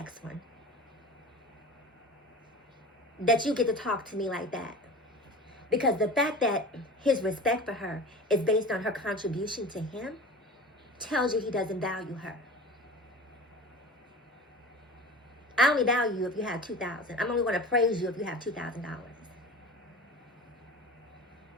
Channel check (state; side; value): normal; both; correlation 0.36